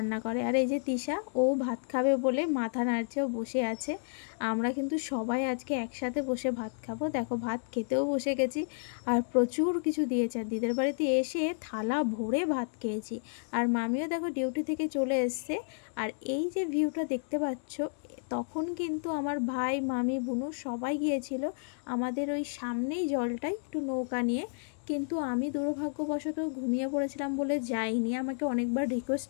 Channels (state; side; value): silent; right; digital silence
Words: করে। আর এই যে তৃষা, ও ভাত খাবে বলে মাথা নাড়ছে, ও বসে আছে। আমরা কিন্তু সবাই আজকে একসাথে বসে ভাত খাবো। দেখো ভাত খেতেও বসে গেছি। আর প্রচুর কিছু দিয়েছে। আর দিদার বাড়িতে এসে থালা ভরে ভাত খেয়েছি। আর মামিও দেখো ডিউটি থেকে চলে এসছে। আর এই যে ভিউটা দেখতে পাচ্ছ, তখন কিন্তু আমার ভাই মামি বুনু সবাই গিয়েছিল আমাদের ওই সামনেই জলটাই একটু নৌকা নিয়ে, কিন্তু আমি দুর্ভাগ্যবশত ঘুমিয়ে পড়েছিলাম বলে যাইনি। আমাকে অনেকবার